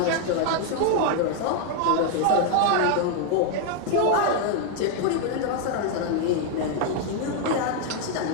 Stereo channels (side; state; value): both; different; correlation 0.00